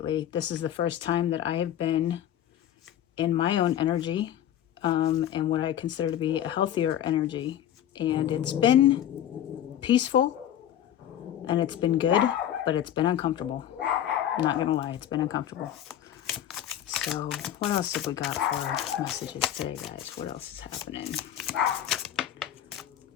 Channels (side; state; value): right; quieter; 11.0 dB